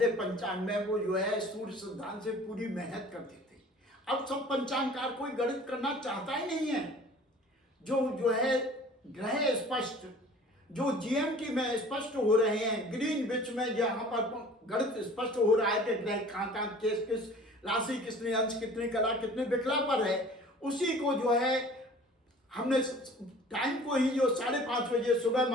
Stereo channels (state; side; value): normal; both; correlation 0.47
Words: पंचांग में वो जो है सूर्य सिद्धांत से पूरी मेहनत करते थे। अब सब पंचांगकार कोई गणित करना चाहता ही नहीं है। जो है ग्रह स्पष्ट, जो जीएमटी में स्पष्ट हो रहे हैं, ग्रीनविच में जहाँ पर गणित स्पष्ट हो रहा है कि ग्रह कहाँ किस राशि, कितने अंश, कितने कला, कितने विकला पर है, उसी को जो है हमने टाइम को ही जो 5:30 बजे सुबह